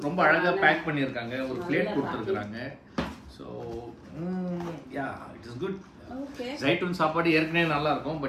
ரொம்ப அழகா பேக் பண்ணிருக்காங்க, ஒரு பிளேட் கொடுத்துருக்காங்க. So yeah it is good. Zaitoon சாப்பாடு ஏற்கனவே நல்லா இருக்கும்,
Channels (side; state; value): both; identical; correlation 1.00